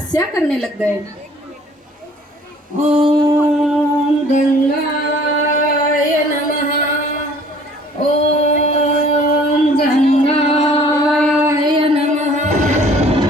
करने लग गए। ओम गंगाय नमः। ओम गंगाय नमः।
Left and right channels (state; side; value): normal; both; correlation 0.54